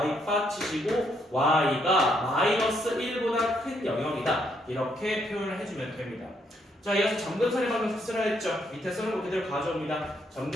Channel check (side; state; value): both; normal; correlation 0.74